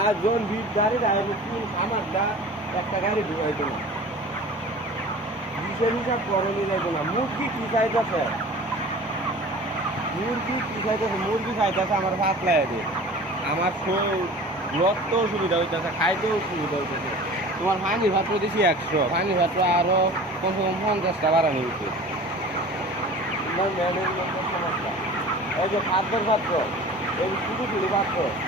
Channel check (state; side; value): normal; both; correlation 0.40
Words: জন 20 গাড়ি রাখবে কোন খামারটা একটা গাড়ি ঢুকাইতো না 20-এর হিসাব করণই যাইতো না মুরগি কি চাইতেছে মুরগি খাইতেছে আমার ভাত লাগে আমার রক্ত সুবিধা হইতেছে খাইতেও সুবিধা হইতেছে তোমার পানি ভাত দিয়েছি 100 পানি ভাত আরো কমসে কম 50টা বাড়ানো উচিত তোমার ম্যানেজমেন্টের সমস্যা এই যে খাদ্যের পাত্র এই ছোটো ছোটো পাত্র